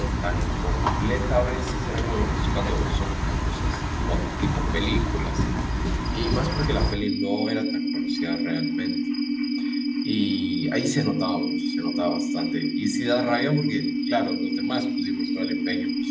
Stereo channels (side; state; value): both; identical; correlation 1.00